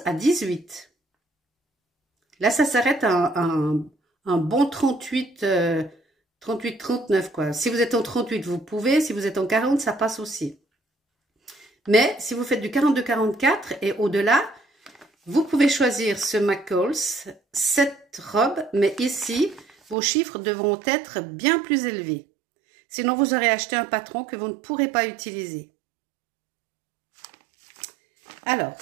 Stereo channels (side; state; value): left; drops out; at 20.0 s